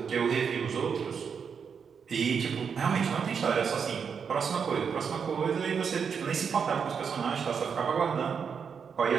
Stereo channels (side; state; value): left; quieter; 6.5 dB